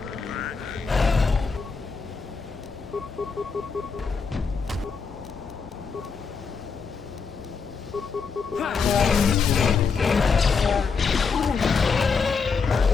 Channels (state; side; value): quieter; right; 5.3 dB